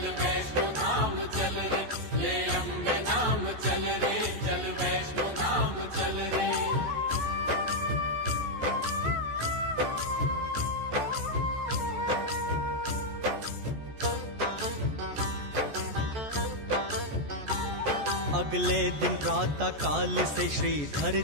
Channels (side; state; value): left; late; 14 ms